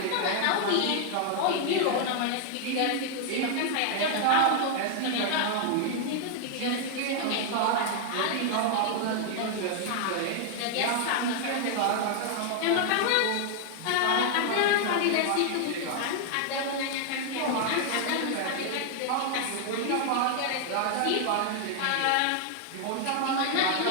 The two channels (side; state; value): both; different; correlation 0.00